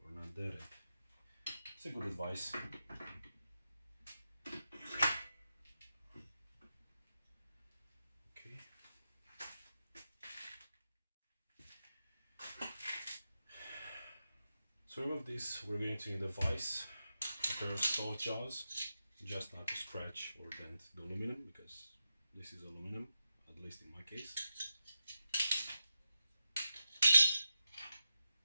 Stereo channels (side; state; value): both; inverted; correlation -0.87